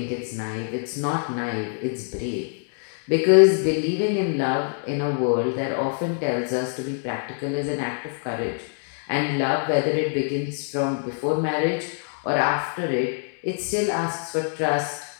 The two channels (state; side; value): silent; right; 57 dB below the other